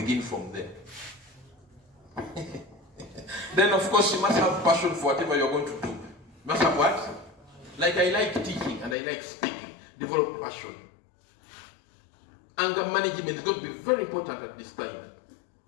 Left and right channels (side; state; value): right; drops out; at 9.0 s